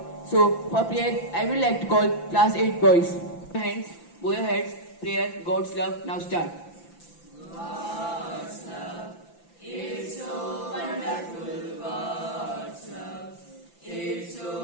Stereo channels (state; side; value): late; right; 5.9 ms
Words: So for prayer, I would like to call class 8 boys. Hands, bow your heads, prayer, God's love. Now start. God's love, it's so wonderful. God's love, it's